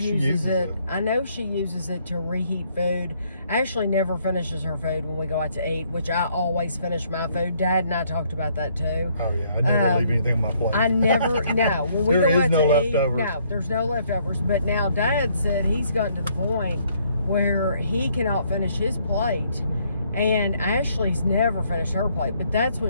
it. it. I know she uses it to reheat food. Ashley never finishes her food when we go out to eat, which I always finish my food. Dad and I talked about that too. Oh yeah, I never leave anything on my plate. I never. No, when we there go is out no to leftovers. eat, no, there's no leftovers. But now Dad said he's gotten to the point where he cannot finish his plate. And Ashley's never finished her plate, but that's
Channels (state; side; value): inverted; both; correlation -0.68